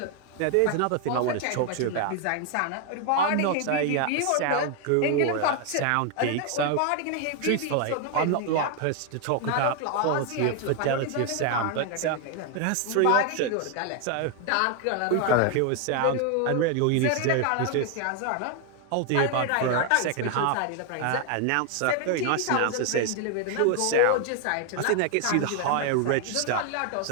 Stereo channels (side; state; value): both; different; correlation 0.01